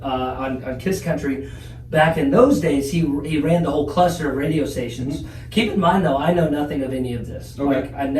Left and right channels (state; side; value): identical; both; correlation 1.00